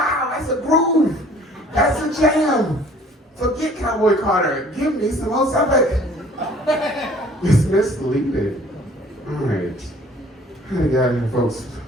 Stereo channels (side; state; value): both; normal; correlation 0.53